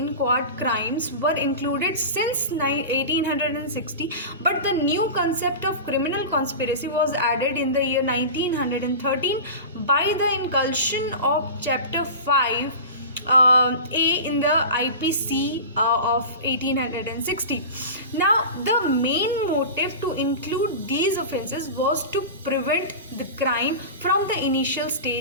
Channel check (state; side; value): inverted; both; correlation -0.30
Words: crimes were included since 1860, but the new concept of criminal conspiracy was added in the year 1913 by the inclusion of chapter 5 A in the IPC of 1860. Now, the main motive to include these offences was to prevent the crime from the initial